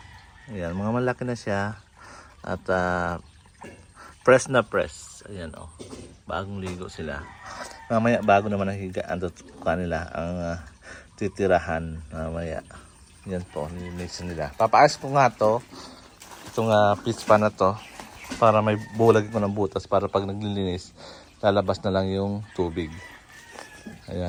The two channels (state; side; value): identical; both; correlation 1.00